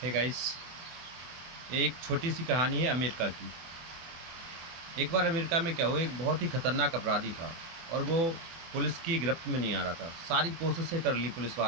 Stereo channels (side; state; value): left; late; 24 ms